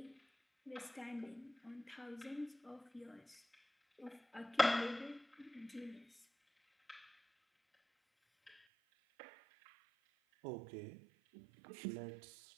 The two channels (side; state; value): left; drops out; at 8.6 s